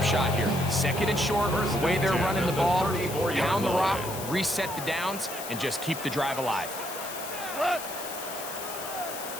shot here. 2nd and short, the way they're running the ball, pound the rock, reset the downs, and just keep the drive alive.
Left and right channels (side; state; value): left; noise; hiss, 10 dB below the sound